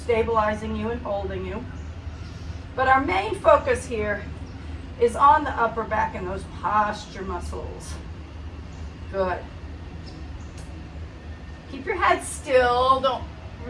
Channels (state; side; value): identical; both; correlation 1.00